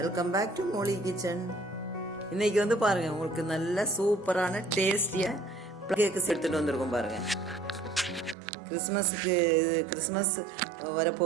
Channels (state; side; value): drops out; left; at 8.3 s